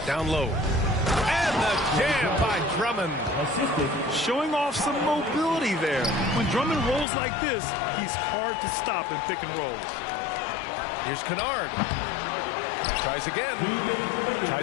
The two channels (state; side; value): drops out; right; at 7.1 s